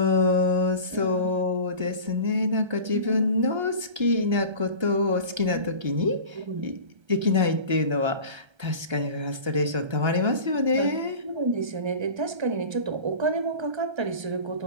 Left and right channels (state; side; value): late; left; 1.3 ms